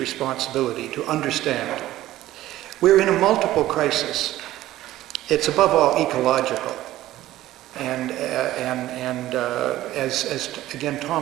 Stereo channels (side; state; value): left; quieter; 15.0 dB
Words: to understand. We're in a multiple crisis. It's above all ecological. And as again